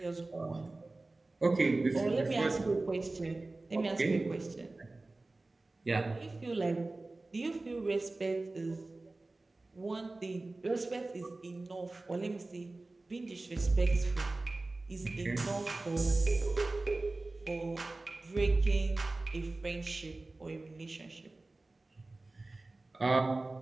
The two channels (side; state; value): left; quieter; 3.1 dB